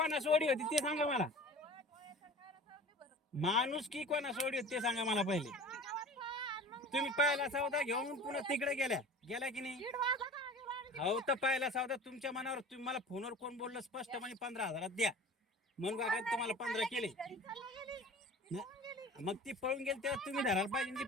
सोडी होती ते सांगा मला. माणूस की कोणा सोडी होती ते सांगा मला पहिले. तुम्ही पहिला सौदा घेऊन पुन्हा तिकडे गेल्या की नाही? हो तर पहिला सौदा तुमच्या मनावर. तुम्ही मला फोनवर कोण बोललं स्पष्टपणे 15,000 द्या म्हणून का तुम्हाला 15 केले. मग ती पळून गेली तेव्हा तुम्ही धरायला पाहिजे. ती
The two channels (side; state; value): both; normal; correlation 0.40